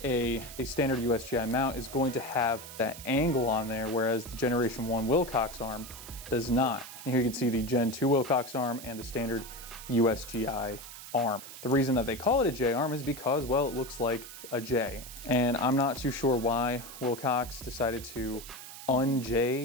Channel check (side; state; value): right; noise; hiss, 13 dB below the sound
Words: a standard USGI mount is going to have that angle on there, whereas the Generation 1 Wilcox arm does not. And here you can see the Gen 2 Wilcox arm and the standard USGI arm. The reason that they call it a J-arm is because, well, it looks like a J. And I'm not too sure why Wilcox decided to